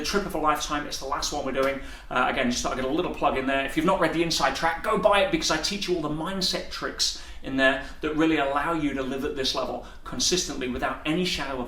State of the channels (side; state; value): both; identical; correlation 1.00